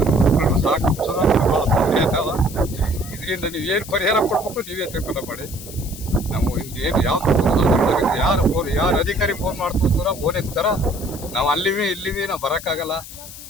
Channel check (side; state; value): left; noise; hiss, 14 dB below the sound